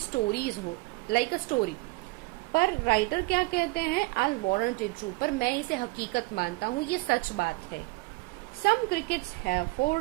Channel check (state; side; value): quieter; left; 24.4 dB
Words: हो, लाइक अ स्टोरी। पर राइटर क्या कहते हैं? आई वारंट इट ट्रू, पर मैं इसे हकीकत मानता हूँ, ये सच बात है। Some crickets have